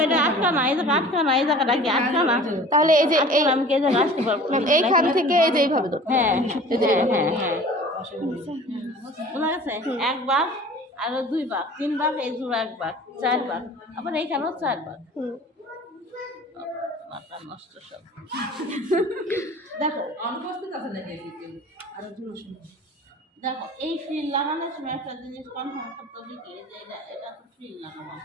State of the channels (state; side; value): normal; both; correlation 0.44